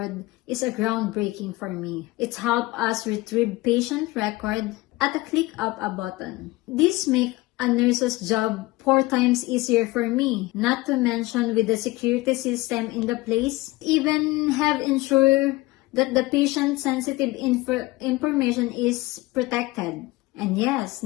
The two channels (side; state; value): right; quieter; 20.3 dB